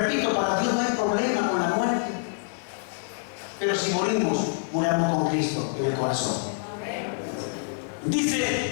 para Dios no hay problema con la muerte, pero si morimos, muramos con Cristo en el corazón.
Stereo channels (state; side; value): silent; right; digital silence